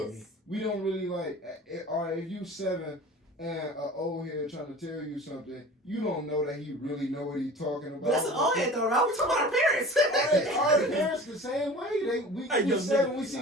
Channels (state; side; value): normal; both; correlation 0.39